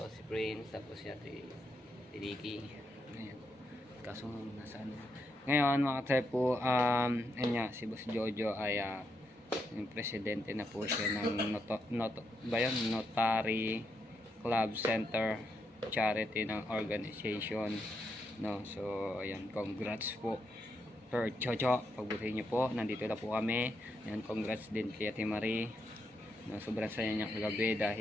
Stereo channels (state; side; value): normal; both; correlation 0.81